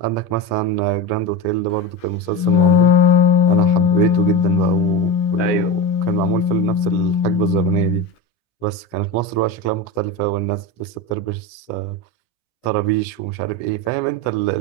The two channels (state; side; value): late; right; 17 ms